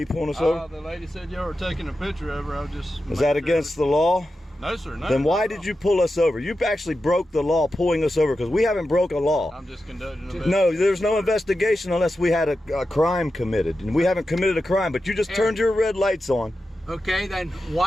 pulling us over? The lady said y'all were taking a picture of her. I was just. Is that against the law? No, sir. No. Then why did you pull us over? You actually broke the law pulling us over because we haven't broke a law. I'm just conducting an No, there's no investigation unless we had a crime committed. And we haven't committed a crime, but you just turned your red lights on. Okay, then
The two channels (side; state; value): both; normal; correlation 0.91